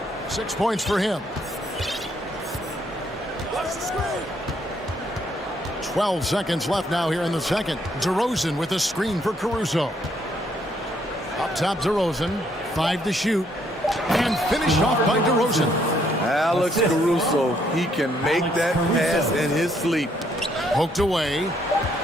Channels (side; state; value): both; normal; correlation 0.70